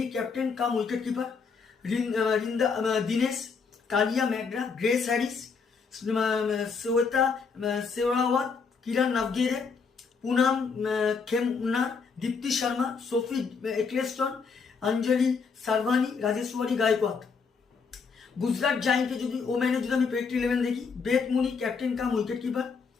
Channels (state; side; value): quieter; right; 5.3 dB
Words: ক্যাপ্টেন কাম উইকেট কিপার, দিনেশ কালিয়া ম্যাগরা, গ্রেস হ্যারিস, শ্বেতা শেওরাওয়াত, কিরণ নাভগিরে, পুনাম খেমনার, দীপ্তি শর্মা, সোফি এক্লেস্টন, অঞ্জলি সারভানি, রাজেশ্বরী গায়কোয়াদ। গুজরাট জায়েন্টে যদি ওম্যানে যদি আমি প্রেডিক্ট 11 দেখি, বেথ মুনি ক্যাপ্টেন কাম উইকেট কিপার,